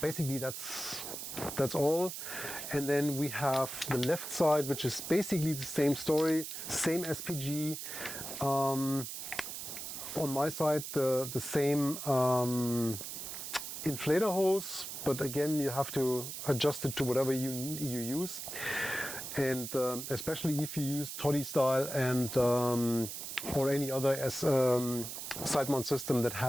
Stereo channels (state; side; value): noise; right; hiss, 7 dB below the sound